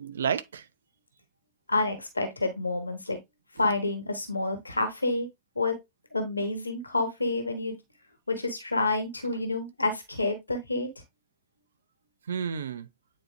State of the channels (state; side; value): inverted; both; correlation -0.73